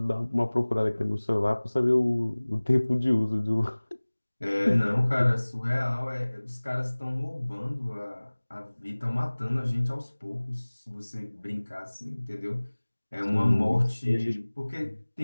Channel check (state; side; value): inverted; both; correlation -1.00